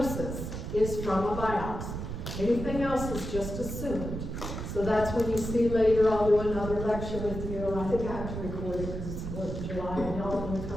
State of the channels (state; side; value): noise; right; rumble, 6 dB below the sound